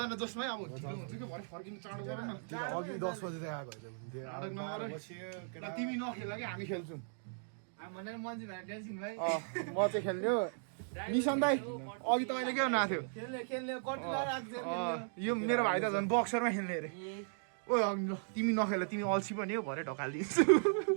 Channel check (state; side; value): silent; left; digital silence